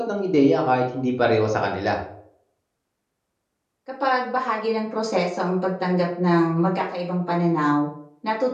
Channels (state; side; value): identical; both; correlation 1.00